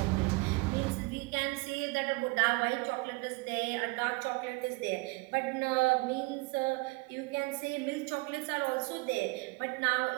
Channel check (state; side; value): quieter; left; 26.6 dB